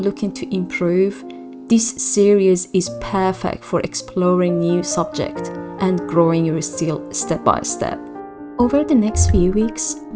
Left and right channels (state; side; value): identical; both; correlation 1.00